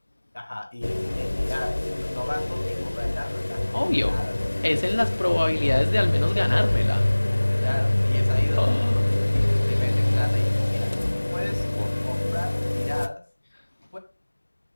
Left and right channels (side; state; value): both; inverted; correlation -1.00